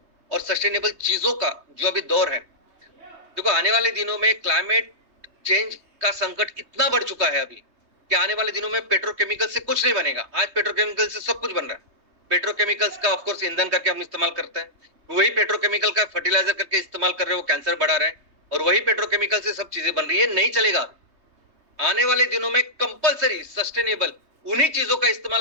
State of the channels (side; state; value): left; late; 3.2 ms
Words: और सस्टेनेबल चीजों का जो अभी दौर है, देखो आने वाले दिनों में क्लाइमेट चेंज का संकट इतना बढ़ चुका है अभी कि आने वाले दिनों में पेट्रोकेमिकल से कुछ नहीं बनेगा। आज पेट्रोकेमिकल से सब कुछ बन रहा है। पेट्रोकेमिकल्स का ऑफकोर्स ईंधन करके हम इस्तेमाल करते हैं, वही पेट्रोकेमिकल का फर्टिलाइजर करके इस्तेमाल कर रहे हैं, वो कैंसर बढ़ा रहे हैं, और वही पेट्रोकेमिकल से सब चीजें बन रही है। नहीं चलेगा। आने वाले दिनों में कंपलसरी सस्टेनेबल उन्हीं चीजों का इस्तेमाल